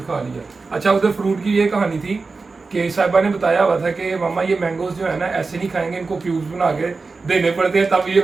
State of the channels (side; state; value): left; quieter; 4.1 dB